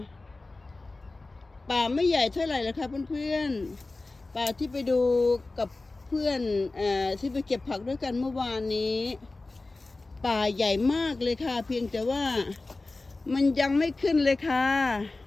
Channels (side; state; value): right; quieter; 3.3 dB